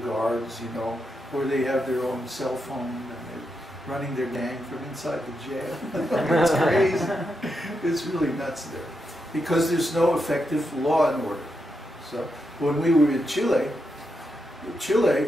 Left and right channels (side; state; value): both; normal; correlation 0.84